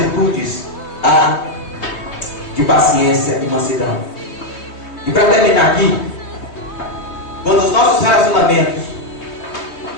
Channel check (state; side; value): late; right; 3.3 ms